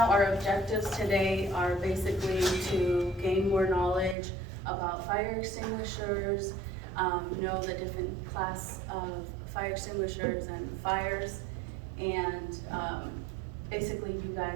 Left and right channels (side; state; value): left; drops out; at 4.2 s